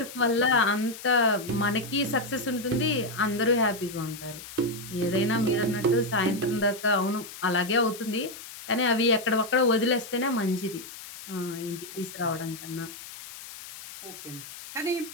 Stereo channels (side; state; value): left; noise; hiss, 14 dB below the sound